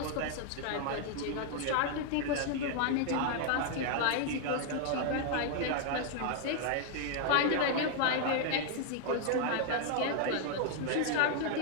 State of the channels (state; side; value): different; both; correlation 0.00